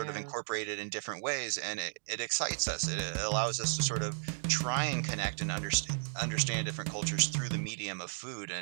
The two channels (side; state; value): left; silent; digital silence